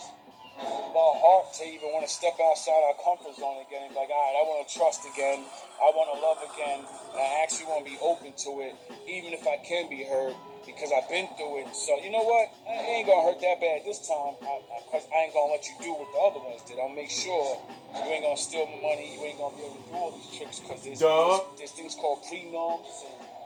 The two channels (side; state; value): both; identical; correlation 1.00